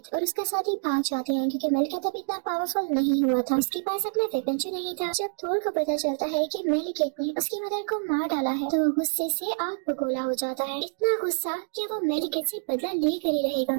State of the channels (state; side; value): silent; left; digital silence